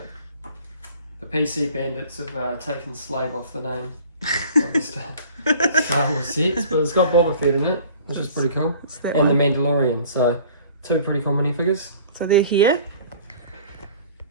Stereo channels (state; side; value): inverted; both; correlation -0.48